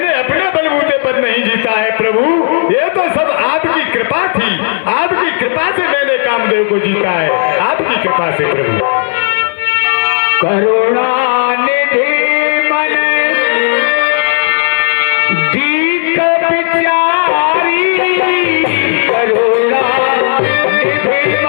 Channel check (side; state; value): right; silent; digital silence